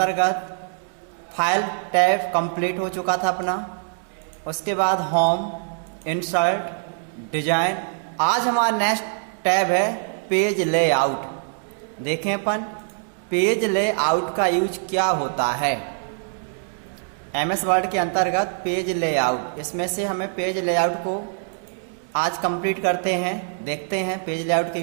फाइल टैब कंप्लीट हो चुका था अपना। उसके बाद होम, इंसर्ट, डिजाइन। आज हमारा नेक्स्ट टैब है पेज लेआउट। देखें अपन पेज लेआउट का यूज क्या होता है। एमएस वर्ड के अंतर्गत पेज लेआउट, इसमें से हमें पेज लेआउट को आज कंप्लीट करते हैं। देखते हैं पेज लेआउट का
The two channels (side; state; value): left; silent; digital silence